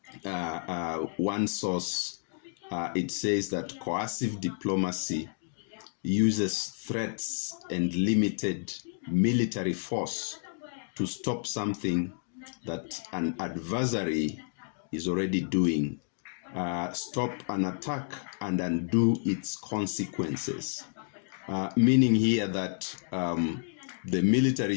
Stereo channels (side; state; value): right; silent; digital silence